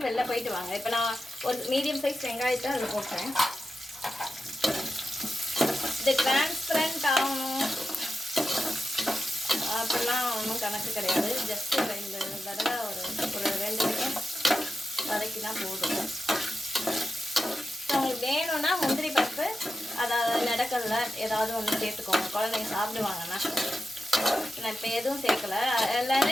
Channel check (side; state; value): both; normal; correlation 0.90